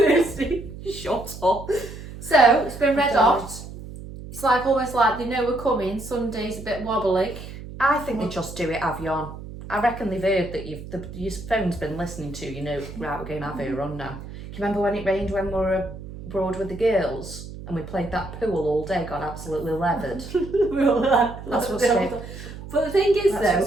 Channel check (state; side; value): noise; right; hum, 12 dB below the sound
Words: Shut up. So, it's been red God. hot. It's like almost like they know we're coming. Sunday's a bit wobbly. I think they just do it Avion. I reckon they've heard that your phone's been listening to, you know, right, we're going to have her on now. Do you remember when it rained when we were abroad with the girls? And we played that pool all day, got absolutely leathered. That's what's going But the thing is,